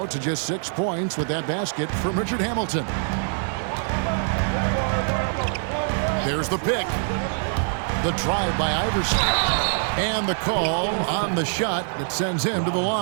to just 6 points with that basket from Richard Hamilton. There's the pick. The drive by Iverson. And the call on the shot that sends him to the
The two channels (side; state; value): left; silent; digital silence